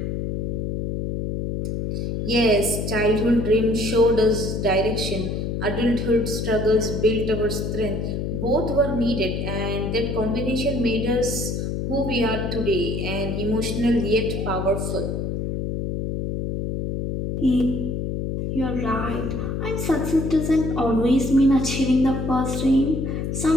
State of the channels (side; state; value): left; noise; hum, 2 dB below the sound